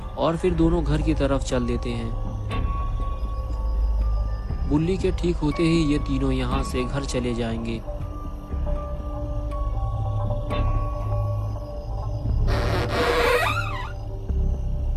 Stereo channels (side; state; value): both; identical; correlation 1.00